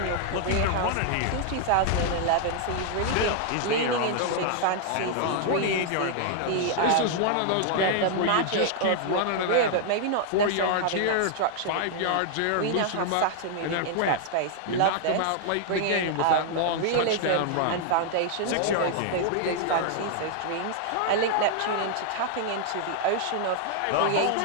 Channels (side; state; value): both; different; correlation 0.00